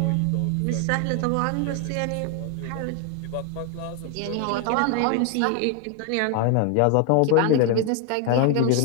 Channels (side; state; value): both; different; correlation 0.01